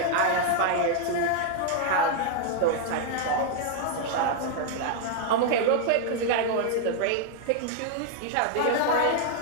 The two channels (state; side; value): different; both; correlation 0.00